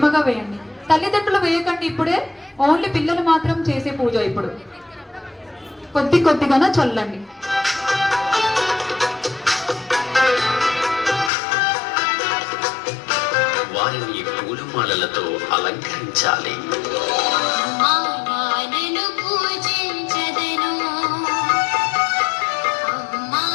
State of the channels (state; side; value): drops out; right; at 11.3 s